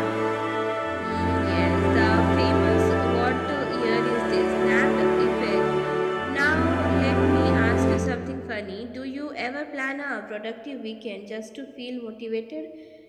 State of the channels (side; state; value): both; identical; correlation 1.00